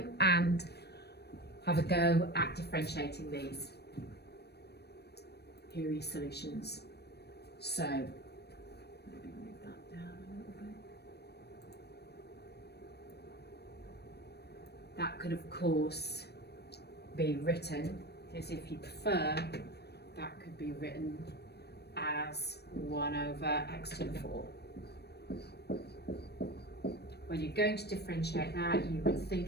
and have a go at differentiating these. Here are your solutions. So maybe move that down a little bit. That could of course be written as, if you prefer, that could be written as 1 over x to the 4. When you're going to differentiate that, you would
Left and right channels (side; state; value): right; late; 0.47 ms